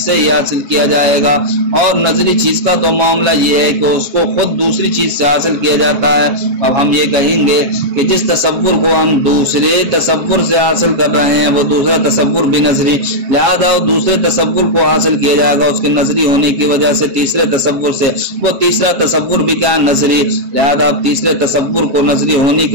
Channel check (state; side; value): late; left; 7.3 ms